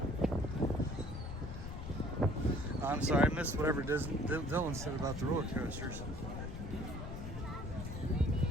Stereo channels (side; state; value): left; noise; rumble, 7 dB below the sound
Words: I'm sorry, I missed whatever Dylan said about the roller coasters.